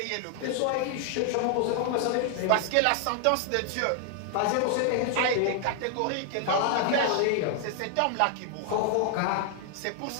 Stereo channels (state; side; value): different; both; correlation 0.00